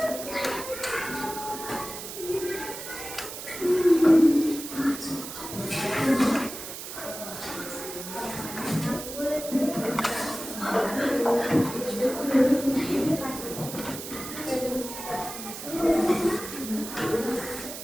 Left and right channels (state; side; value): noise; right; hiss, 9 dB below the sound